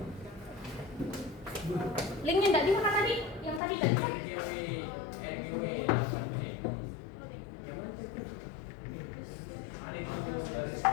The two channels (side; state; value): right; drops out; at 3.6 s